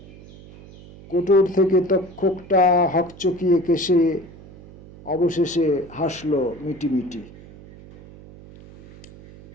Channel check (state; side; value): noise; right; hum, 20 dB below the sound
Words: কোটর থেকে তক্ষকটা হকচকিয়ে কেশে অবশেষে হাসলো মিটিমিটি।